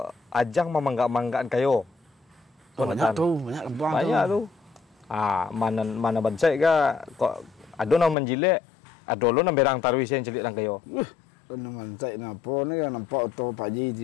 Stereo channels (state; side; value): drops out; right; at 8.2 s